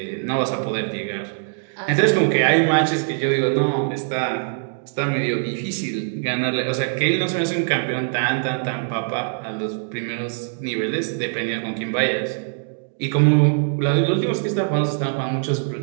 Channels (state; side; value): silent; left; digital silence